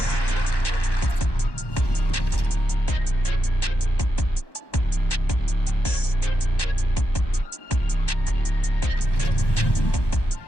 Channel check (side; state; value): right; late; 1.1 ms